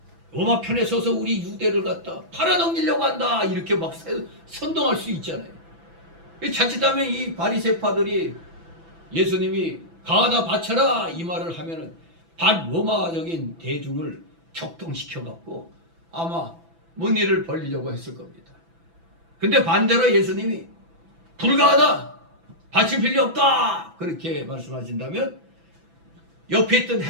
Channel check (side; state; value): left; late; 6.0 ms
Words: 로마 편에 서서 우리 유대를 갖다 팔아넘기려고 한다 이렇게 막 선동할 수 있잖아요. 자칫하면 이 바리새파들이 예수님이 가하다 바쳐라 이 말을 하면은 반로마적인 대중을 격동시켜 갖고 아마 뭔 일을 벌리려고 했을 겁니다. 근데 반대로 예수님이 불가하다 바칠 필요 없다 그렇게 말씀하신다면 옆에 있던